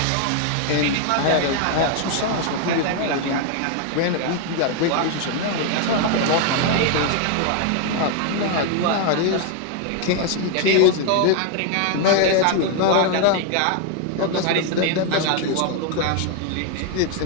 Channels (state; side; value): different; both; correlation 0.01